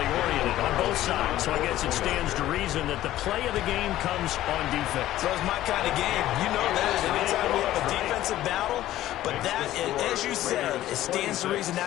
oriented on both sides, so I guess it stands to reason that the play of the game comes on defense. So it's my kind of game. You know that. Anytime we have a defensive battle, but that, as you said, it stands to reason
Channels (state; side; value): quieter; right; 14.2 dB